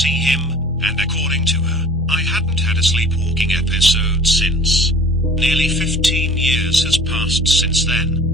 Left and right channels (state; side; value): normal; both; correlation 0.46